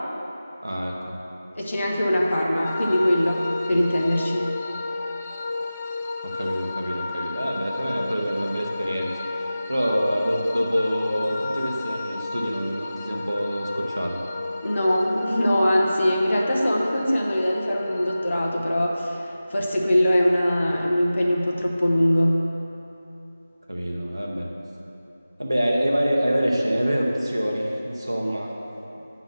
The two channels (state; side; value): inverted; both; correlation -0.96